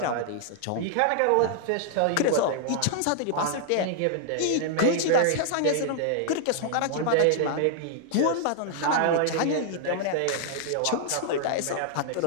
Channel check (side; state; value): both; different; correlation -0.01